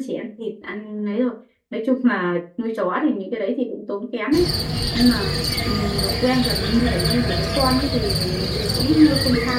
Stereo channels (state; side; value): identical; both; correlation 1.00